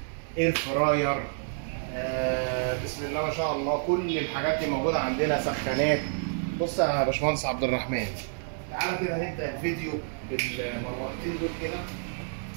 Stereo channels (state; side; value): silent; left; digital silence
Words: اير فراير، بسم الله ما شاء الله كل الحاجات دي موجوده عندنا، سخانات. بص يا باشمهندس عبد الرحمن، تعالى كده نبدا الفيديو بالمروحتين دول. كده